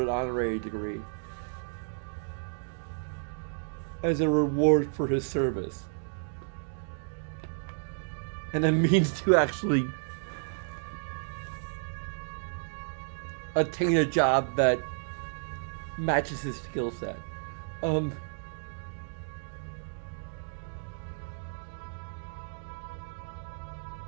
an honorary degree as a reward for his service. And a means to actually attain a job that matches his skill set.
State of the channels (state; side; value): silent; left; digital silence